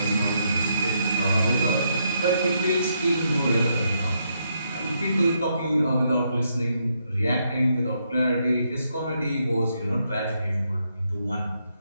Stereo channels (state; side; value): inverted; both; correlation -0.77